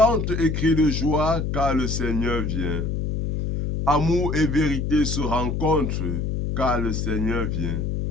et crie de joie, car le Seigneur vient. Amour et vérité se rencontrent, car le Seigneur vient.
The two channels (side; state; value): left; noise; hum, 1 dB below the sound